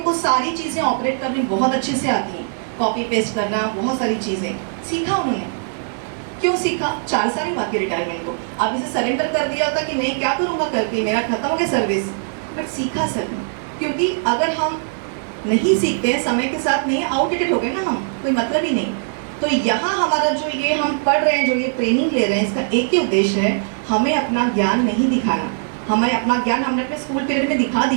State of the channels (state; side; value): silent; left; digital silence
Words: सारी चीज़ें ऑपरेट करनी बहुत अच्छे से आती हैं, कॉपी पेस्ट करना, बहुत सारी चीज़ें सीखा उन्होंने। क्यों सीखा? 4 साल ही बाकी रिटायरमेंट को। अब इसे सरेंडर कर दिया होता कि नहीं क्या करूँगा करके, मेरा खत्म हो गया सर्विस, बट सीखा सर ने। क्योंकि अगर हम नहीं सीखते हैं, समय के साथ नहीं, आउटडेटेड हो गए ना हम, कोई मतलब ही नहीं। तो यहाँ हमारा जो ये हम पढ़ रहे हैं, जो ये ट्रेनिंग ले रहे हैं, इसका एक ही उद्देश्य है, हमें अपना ज्ञान नहीं दिखाना। हमें अपना ज्ञान हमने अपने स्कूल पीरियड में दिखा